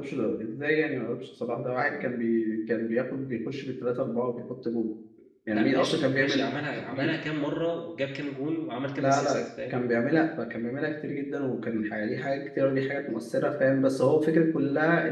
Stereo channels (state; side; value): identical; both; correlation 1.00